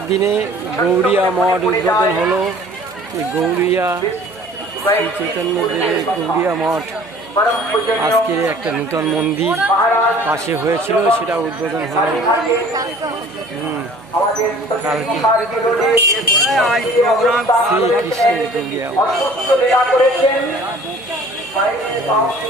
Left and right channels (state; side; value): noise; right; hum, 28 dB below the sound